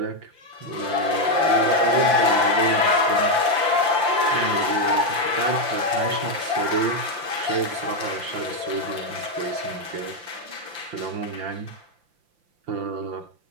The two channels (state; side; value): late; left; 5.8 ms